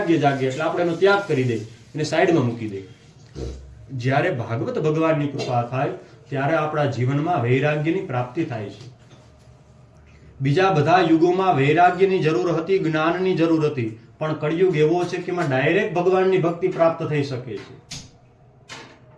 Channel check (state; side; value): identical; both; correlation 1.00